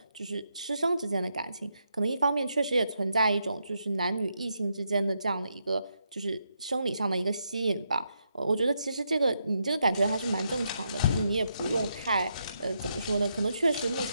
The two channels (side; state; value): both; inverted; correlation -0.81